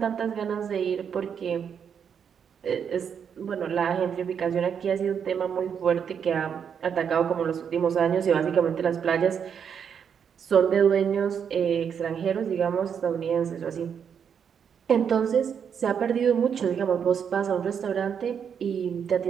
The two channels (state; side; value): quieter; left; 7.5 dB